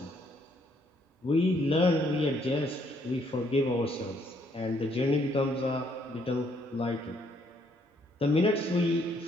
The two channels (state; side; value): normal; both; correlation 0.69